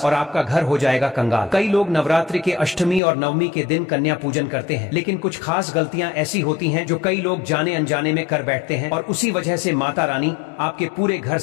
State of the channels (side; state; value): right; drops out; at 3.0 s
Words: और आपका घर हो जाएगा कंगाल। कई लोग नवरात्रि के अष्टमी और नवमी के दिन कन्या पूजन करते हैं, लेकिन कुछ खास गलतियां ऐसी होती हैं जो कई लोग जाने अनजाने में कर बैठते हैं और उसी वजह से माता रानी आपके पूरे घर